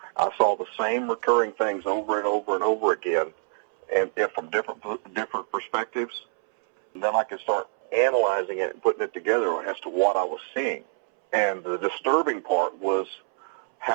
I saw the same recurring things over and over and over again, and from different perspectives. And then I could start analyzing it and putting it together as to what I was seeing. And the disturbing part was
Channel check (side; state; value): left; silent; 61 dB below the other